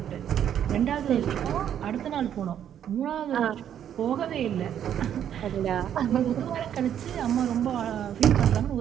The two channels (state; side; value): quieter; left; 9.8 dB